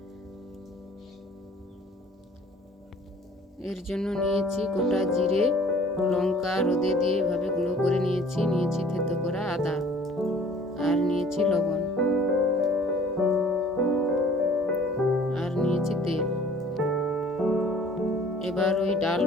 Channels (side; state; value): both; normal; correlation 0.52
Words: এর জন্য নিয়েছি গোটা জিরে, লঙ্কা রোদে দিয়ে এভাবে গুঁড়ো করে নিয়েছি। নিয়েছি থেতো করা আদা, আর নিয়েছি লবণ, আর নিয়েছি তেল। এবার ওই ডাল